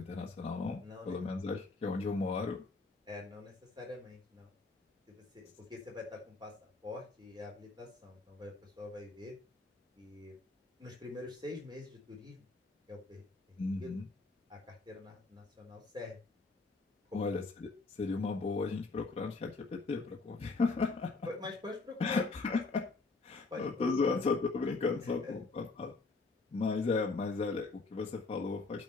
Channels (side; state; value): right; quieter; 3.8 dB